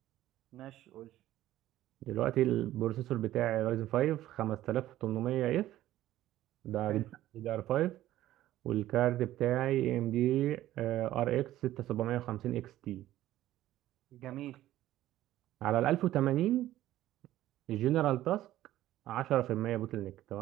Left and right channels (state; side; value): quieter; left; 14.2 dB